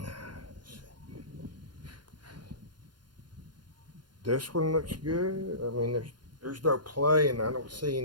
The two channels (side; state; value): left; late; 0.71 ms